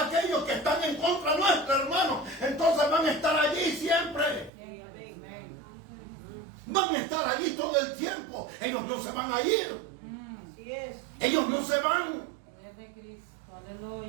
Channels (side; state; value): left; drops out; at 4.5 s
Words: que están en contra nuestro, hermano, entonces van a estar allí siempre. Van a estar allí todo el tiempo. Ellos no se van a ir. Así es. Ellos no se van. De Cristo,